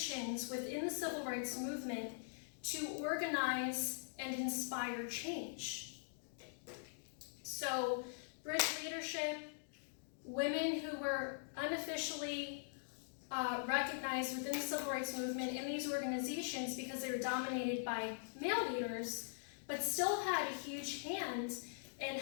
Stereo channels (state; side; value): silent; right; digital silence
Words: within the civil rights movement to organize and inspire change. So, bridge leadership, women who were unofficially recognized within the civil rights movement in these organizations because they were dominated by male leaders, but still had a huge hand in